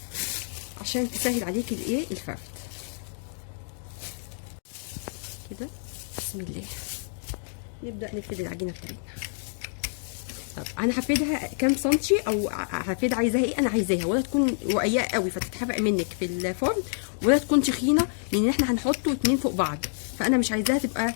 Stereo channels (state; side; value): silent; right; digital silence